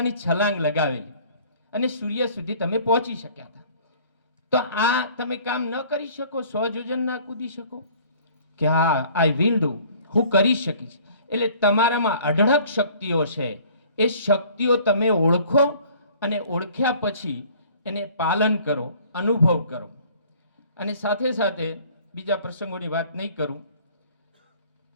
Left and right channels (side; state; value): both; inverted; correlation -0.53